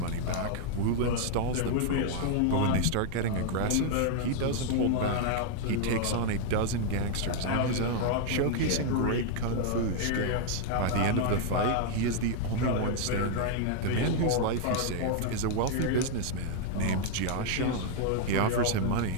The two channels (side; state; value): both; different; correlation 0.00